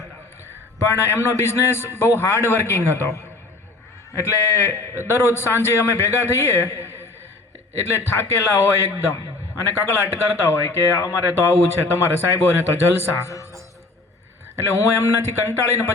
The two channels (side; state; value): right; quieter; 3.2 dB